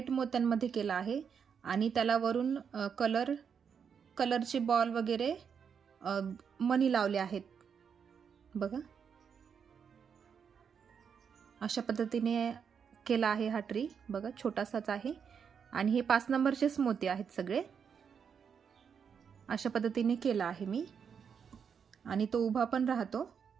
मोत्यांमध्ये केला आहे आणि त्याला वरून कलरचे बॉल वगैरे मनी लावले आहेत। बघा अशा पद्धतीने केला आहे हा ट्री। बघा छोटासाच आहे आणि हे 5 नंबरचेच मोती आहेत सगळे। अशा पद्धतीने केला आहे मी आणि तो उभा पण राहतो।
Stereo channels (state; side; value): quieter; left; 6.9 dB